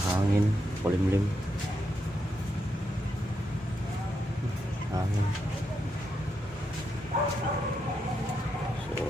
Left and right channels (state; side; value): normal; both; correlation 0.82